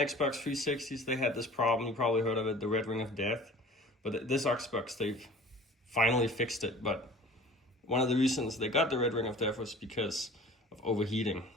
360s, they had this problem. You probably heard of it, the red ring of death. But this Xbox, they've finally fixed it. But one of the reasons they got the red ring of death was because of overheating.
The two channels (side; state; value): both; normal; correlation 0.44